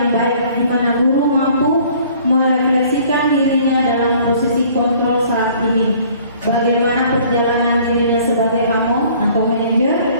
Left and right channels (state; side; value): inverted; both; correlation -0.55